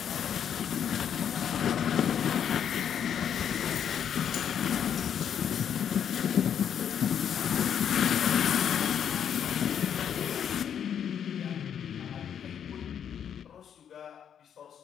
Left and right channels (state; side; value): quieter; right; 8.6 dB